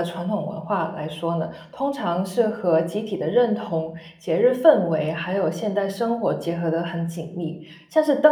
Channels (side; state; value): both; identical; correlation 1.00